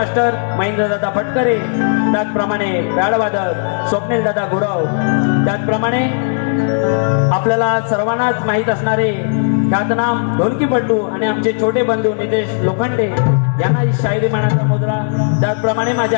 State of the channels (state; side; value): silent; right; digital silence